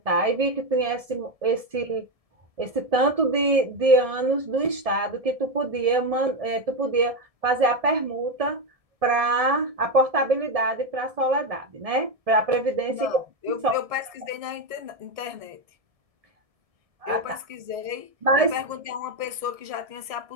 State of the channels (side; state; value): left; late; 1.7 ms